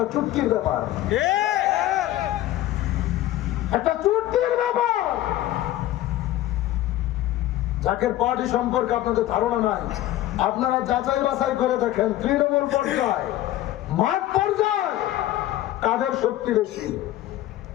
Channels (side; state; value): right; quieter; 14.4 dB